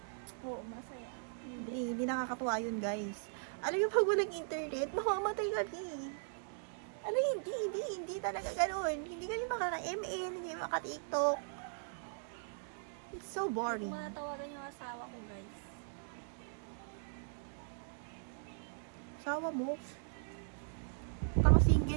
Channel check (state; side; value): silent; left; digital silence